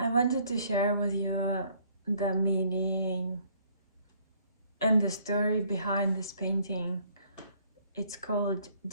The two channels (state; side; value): inverted; both; correlation -0.62